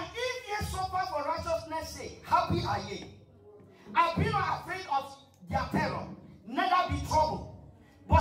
if ye suffer for righteousness' sake, happy are ye. And be not afraid of their terror, neither be troubled.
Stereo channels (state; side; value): identical; both; correlation 1.00